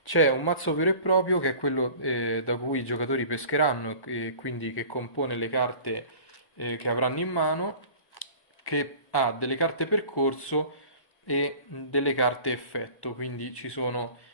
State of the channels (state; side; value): late; right; 1.1 ms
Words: C'è un mazzo vero e proprio che è quello da cui i giocatori pescheranno e quindi che compone le carte che avranno in mano, che ha delle carte percorso e delle carte effetto, quindi ci sono